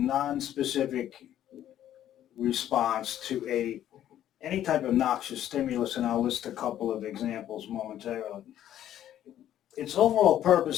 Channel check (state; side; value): quieter; right; 11.6 dB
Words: response to any type of noxious stimulus, and I'll list a couple of examples momentarily. Its overall